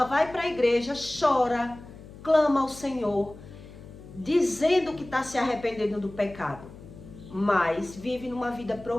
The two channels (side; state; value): left; noise; hum, 17 dB below the sound